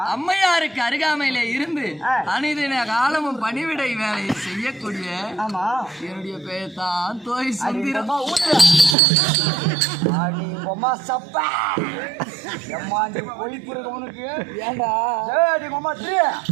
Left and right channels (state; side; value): drops out; left; at 9.0 s